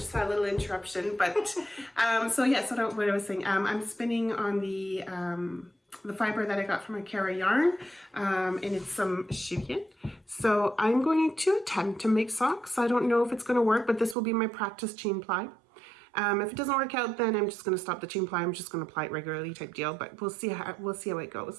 had a little interruption. But so what I was saying, I'm spinning on the fiber that I got from Akara Yarn, and it's some chiffon. So I'm going to attempt to make socks. I don't know if it's going to work, but this will be my practice chain ply. If it doesn't work out, then I'm just going to stop the chain ply. I'm just going to apply it regularly type deal, but we'll see how it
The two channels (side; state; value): left; drops out; at 14.2 s